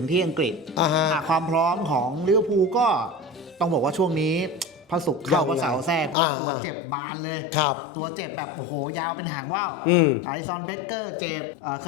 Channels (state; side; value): drops out; right; at 6.2 s